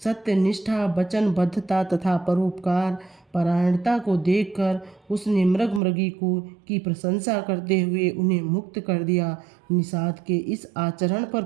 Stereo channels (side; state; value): left; drops out; at 5.8 s